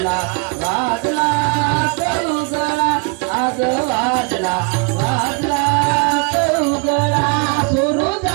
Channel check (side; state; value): left; quieter; 34.5 dB